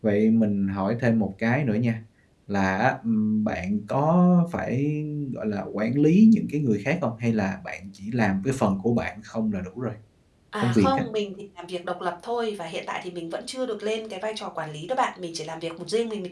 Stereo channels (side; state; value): both; identical; correlation 1.00